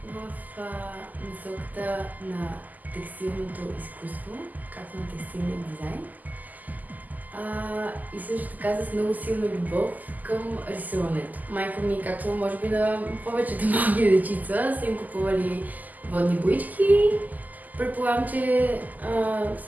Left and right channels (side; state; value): left; late; 0.082 ms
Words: в насоката на текстилното изкуство, както на текстилния дизайн. И също така с много силна любов към рисуването. Майка ми, както може би на повечето малки дечица, са им купували водни боички. Предполагам, че